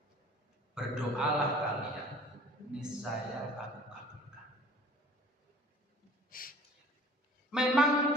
berdoalah kalian, niscaya aku kabulkan. Memang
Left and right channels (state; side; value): normal; both; correlation 0.49